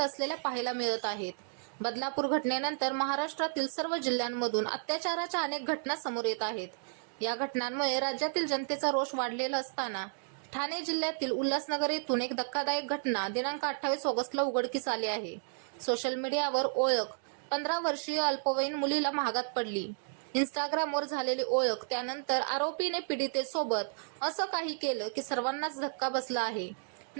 पाहायला मिळत आहेत. बदलापूर घटनेनंतर महाराष्ट्रातील सर्व जिल्ह्यांमधून अत्याचाराच्या अनेक घटना समोर येत आहेत. या घटनांमुळे राज्यातील जनतेचा रोष वाढलेला असताना ठाणे जिल्ह्यातील उल्हासनगर येथून एक धक्कादायक घटना दिनांक 28 ऑगस्टला उघडकीस आली आहे. सोशल मीडियावर ओळख 15 वर्षीय अल्पवयीन मुलीला महागात पडली. इंस्टाग्रामवर झालेली ओळख, त्यानंतर आरोपीने पीडितेसोबत असं काही केलं की सर्वांनाच धक्का बसला आहे.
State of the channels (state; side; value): silent; left; digital silence